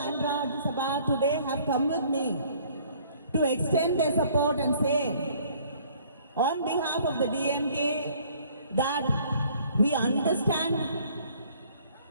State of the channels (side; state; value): both; inverted; correlation -0.58